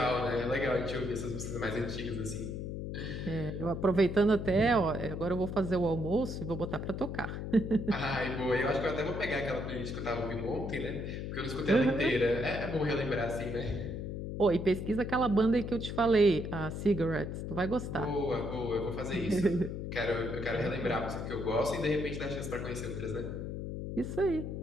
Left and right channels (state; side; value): noise; left; hum, 5 dB below the sound